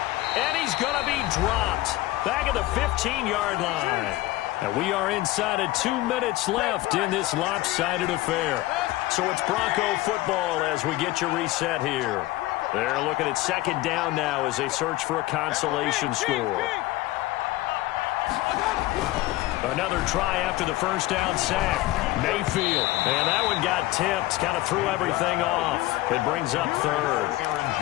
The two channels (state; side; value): quieter; right; 17.9 dB